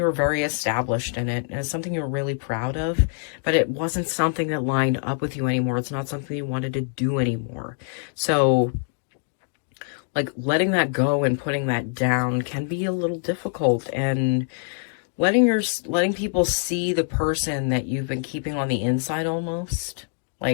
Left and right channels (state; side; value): silent; right; 62 dB below the other